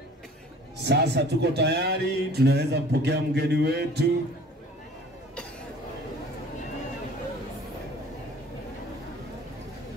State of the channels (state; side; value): normal; both; correlation 0.48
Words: Sasa tuko tayari, tunaweza kupokea mgeni wetu.